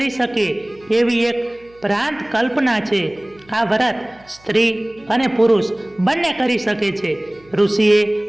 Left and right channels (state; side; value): noise; right; hum, 29 dB below the sound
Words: શકે એવી એક ભ્રાંત કલ્પના છે. આ વ્રત સ્ત્રી અને પુરુષ બંને કરી શકે છે. ઋષિએ